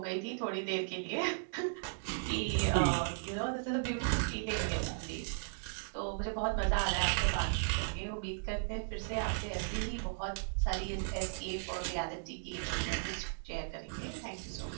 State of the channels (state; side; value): silent; left; digital silence